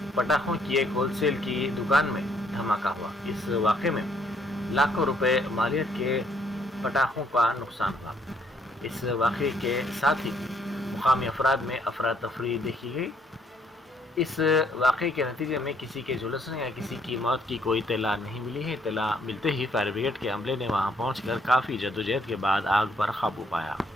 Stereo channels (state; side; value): normal; both; correlation 0.67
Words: پٹاخوں کی ایک ہول سیل کی دکان میں دھماکہ ہوا۔ اس واقعے میں لاکھوں روپے مالیت کے پٹاخوں کا نقصان ہوا۔ اس واقعے کے ساتھ ہی مقامی افراد میں افراتفری دیکھی گئی۔ اس واقعے کے نتیجے میں کسی کے جھلسنے یا کسی کی موت کی کوئی اطلاع نہیں ملی ہے۔ اطلاع ملتے ہی فائر بریگیڈ کے عملے نے وہاں پہنچ کر کافی جدوجہد کے بعد آگ پر قابو پایا۔